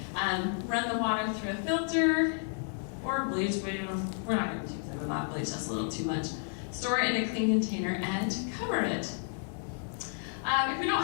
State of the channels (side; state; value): right; silent; 55 dB below the other